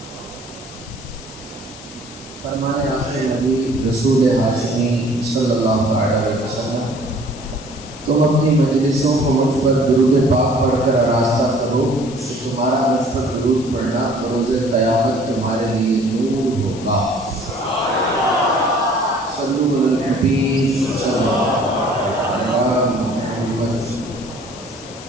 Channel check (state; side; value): noise; left; hiss, 17 dB below the sound